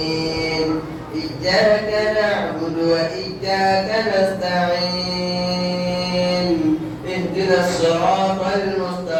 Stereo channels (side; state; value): both; identical; correlation 1.00